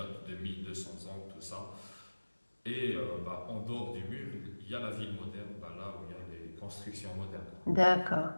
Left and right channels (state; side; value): inverted; both; correlation -1.00